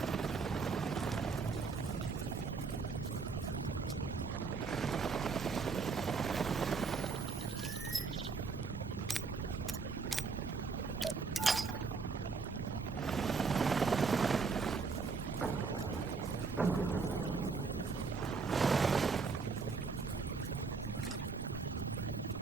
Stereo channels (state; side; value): quieter; left; 4.7 dB